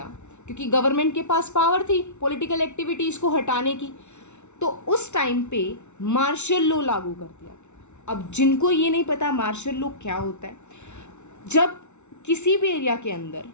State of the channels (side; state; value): right; late; 0.82 ms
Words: क्योंकि गवर्नमेंट के पास पावर थी पॉलिटिकल एक्टिविटीज़ को हटाने की, तो उस टाइम पे मार्शल लॉ लागू कर दिया। अब जिनको ये नहीं पता मार्शल लॉ क्या होता है, जब किसी भी एरिया के अंदर